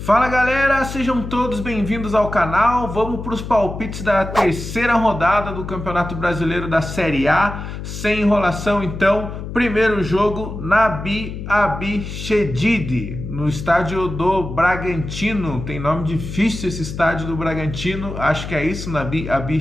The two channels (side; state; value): left; noise; hum, 8 dB below the sound